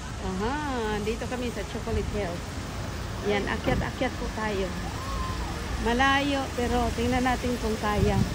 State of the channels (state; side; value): identical; both; correlation 1.00